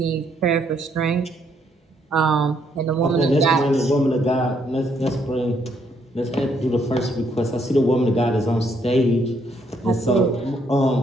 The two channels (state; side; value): normal; both; correlation 0.72